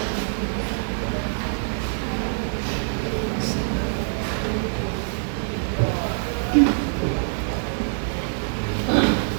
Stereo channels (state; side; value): silent; left; digital silence